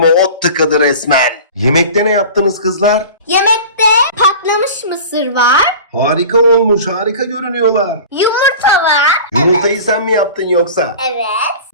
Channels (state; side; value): inverted; both; correlation -0.37